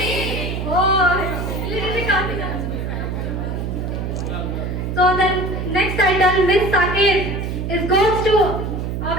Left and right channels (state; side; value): noise; right; hum, 3 dB below the sound